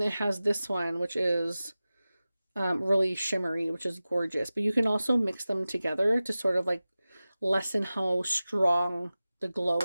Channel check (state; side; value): inverted; both; correlation -0.96